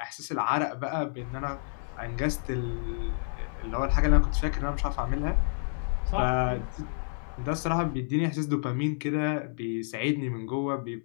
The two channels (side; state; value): right; silent; 58 dB below the other